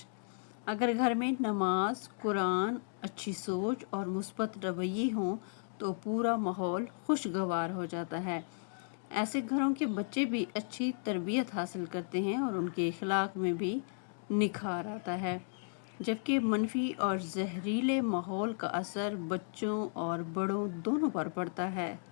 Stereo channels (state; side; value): silent; right; digital silence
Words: اگر گھر میں نماز، قرآن، اچھی سوچ اور مثبت رویے ہوں تو پورا ماحول خوشگوار ہو جاتا ہے۔ ایسے گھروں کے بچے بھی اچھی تربیت حاصل کرتے ہیں اور ان کے اخلاق میں بھی نکھار آتا ہے، جبکہ منفی اور زہریلے ماحول کا اثر بچوں اور بڑوں دونوں پر پڑتا ہے۔